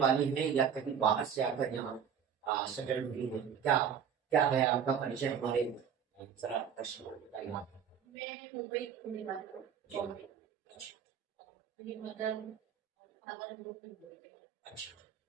हैं या कहीं बाहर से आकर यहाँ सेटल हुई हैं? क्या क्या है आपका परिचय? हमारे जरा दर्शकों को बताइए आप। मैं मुंबई की रहने वाली हूँ, बॉम्बे। अच्छा मेरी मदर फादर लोग भी बोलते हैं। अच्छा,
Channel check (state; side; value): quieter; left; 7.9 dB